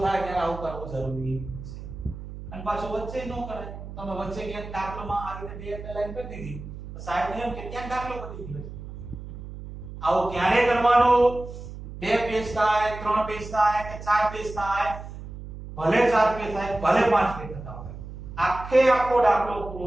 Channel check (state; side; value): noise; right; hum, 12 dB below the sound